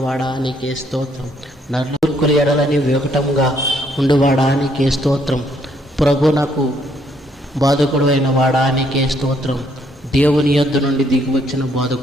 నీకే స్తోత్రం. నలుగురు ఎడలని వికటముగా ఉండువాడా నీకే స్తోత్రం. ప్రభు నాకు బాధకుడు అయిన వాడా నీకే స్తోత్రం. దేవుని యొద్ద నుండి దిగివచ్చిన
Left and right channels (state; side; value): normal; both; correlation 0.70